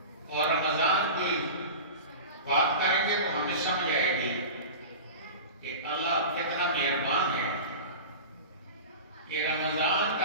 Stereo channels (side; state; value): both; inverted; correlation -0.31